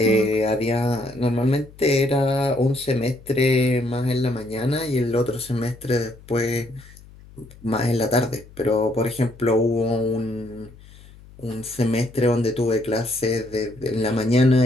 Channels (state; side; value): noise; left; hum, 22 dB below the sound